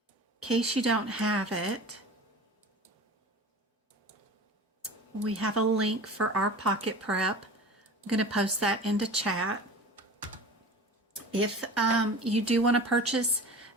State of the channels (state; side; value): normal; both; correlation 0.37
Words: case you don't have it, we have a link for our pocket prep. I'm going to post that into chat. If you do want to purchase